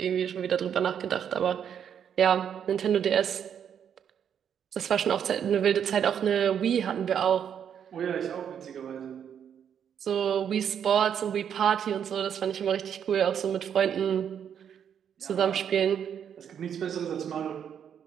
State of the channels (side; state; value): left; quieter; 8.4 dB